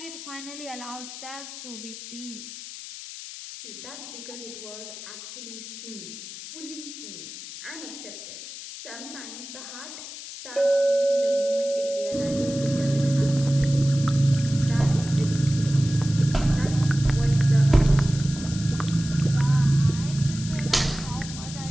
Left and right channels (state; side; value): noise; left; hiss, 12 dB below the sound